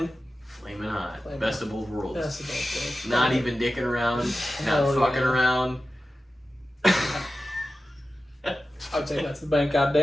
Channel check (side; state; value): both; normal; correlation 0.94